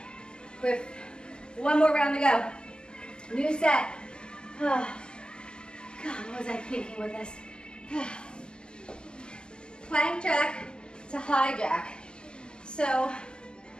With one more round to go. New set. Oh. God, what was I thinking with this? Plank jack to high jack. So,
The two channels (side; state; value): right; late; 0.047 ms